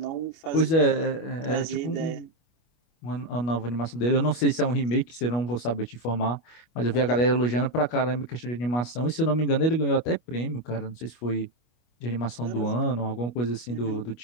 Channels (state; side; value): late; right; 25 ms